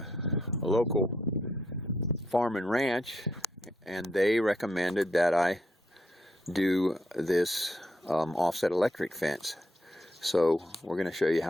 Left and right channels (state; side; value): normal; both; correlation 0.77